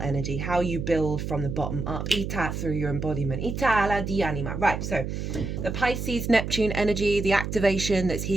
how you build from the bottom up, ita, through your embodiment, ita la di anima. Right, so the Pisces Neptune energy, the activation that's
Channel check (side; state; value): right; noise; hum, 4 dB below the sound